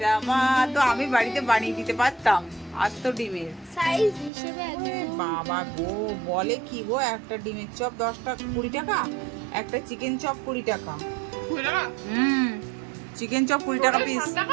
রামা, তো আমি বাড়িতে বানিয়ে দিতে পারতাম আস্ত ডিমের। সাইজ হিসেবে ওরে একদম বাবা গো, বলে কি গো, একটা ডিমের চপ 10 টাকা 20 টাকা, একটা চিকেন চপ 20 টাকা। বুঝলা না? চিকেন চপ 20 টাকা পিস। 7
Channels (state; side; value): drops out; left; at 4.3 s